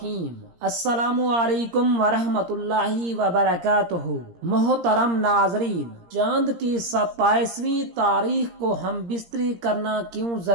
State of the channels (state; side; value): late; left; 17 ms